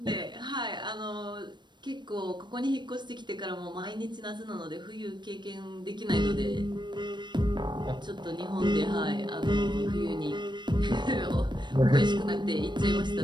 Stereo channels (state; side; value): late; left; 0.22 ms